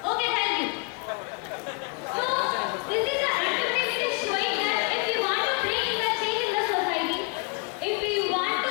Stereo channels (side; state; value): right; quieter; 30.6 dB